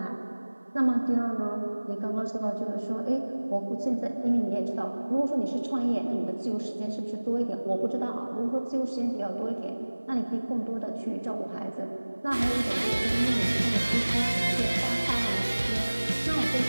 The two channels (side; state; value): both; inverted; correlation -1.00